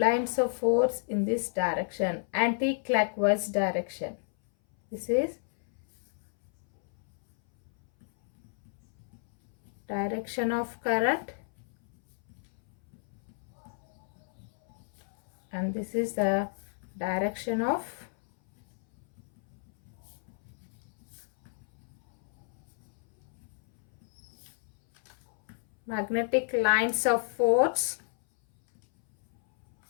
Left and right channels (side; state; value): right; silent; 57 dB below the other